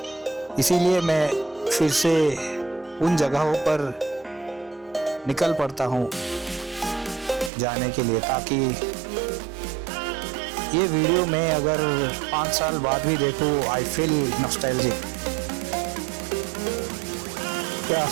इसीलिए मैं फिर से उन जगहों पर निकल पड़ता हूँ जाने के लिए, ताकि ये वीडियो मैं अगर 5 साल बाद भी देखूँ, आई फील नॉस्टैल्जिक। क्या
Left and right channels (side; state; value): left; drops out; at 7.5 s